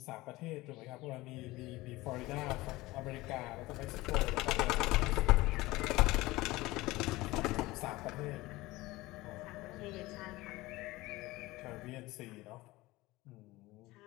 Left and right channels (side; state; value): right; quieter; 19.7 dB